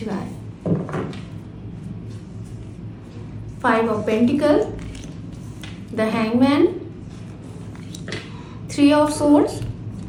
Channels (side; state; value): both; identical; correlation 1.00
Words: 5 of Pentacles, the Hangman, 3 of Swords,